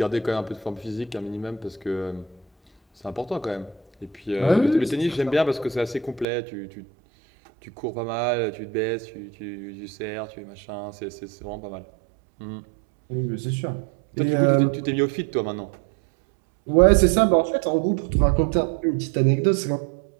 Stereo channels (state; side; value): drops out; left; at 6.2 s